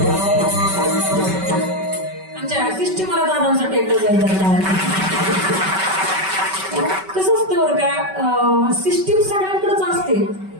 आमच्या सिस्टीमला दादांसाठी एकदा जायचं. कसं असतं बरं का, सिस्टीम सगळ्यांकडेच असते,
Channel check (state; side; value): late; left; 5.2 ms